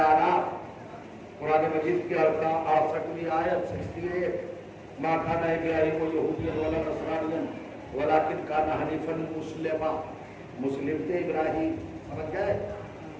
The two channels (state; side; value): identical; both; correlation 1.00